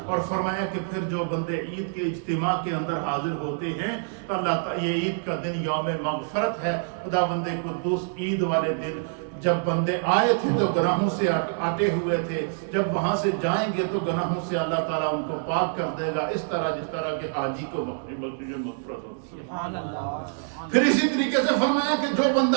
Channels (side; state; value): left; silent; 61 dB below the other